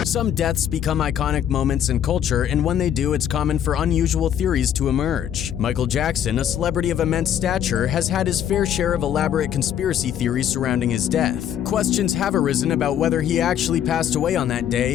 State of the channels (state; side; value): quieter; right; 9.8 dB